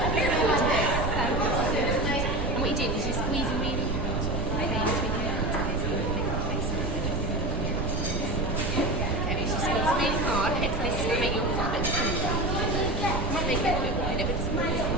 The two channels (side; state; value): right; noise; rumble, 4 dB below the sound